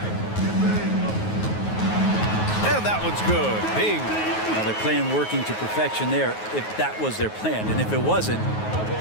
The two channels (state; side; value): late; right; 9.4 ms